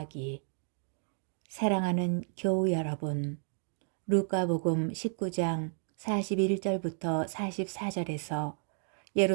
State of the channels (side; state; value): left; silent; 56 dB below the other